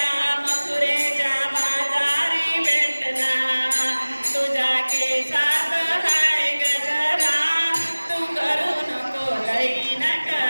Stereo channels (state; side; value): inverted; both; correlation -1.00